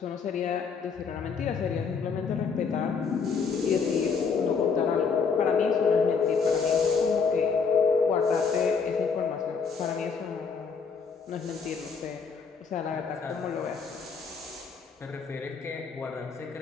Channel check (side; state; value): right; quieter; 5.5 dB